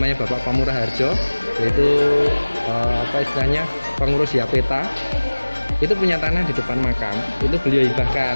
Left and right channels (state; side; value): inverted; both; correlation -1.00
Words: Bapak Pamurah Harjo, yaitu istilahnya pengurus Yapeta, itu punya tanah di depan makam, itu beliau hibahkan.